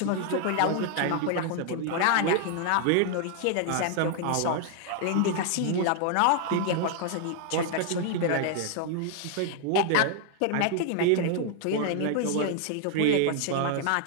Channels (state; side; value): different; both; correlation 0.00